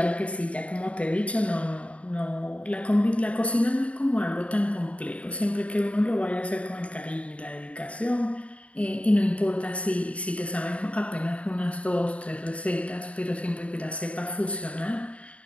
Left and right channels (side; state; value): right; late; 0.064 ms